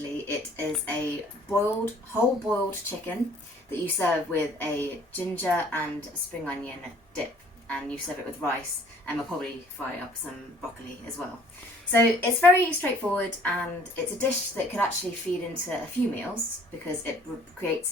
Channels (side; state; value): both; normal; correlation 0.57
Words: it is a whole boiled chicken that you serve with a ginger and spring onion dip, and you serve it with rice, and we'll probably fry up some broccoli as well. So it's very straightforward, and it's a dish that could actually feed into a few meals because it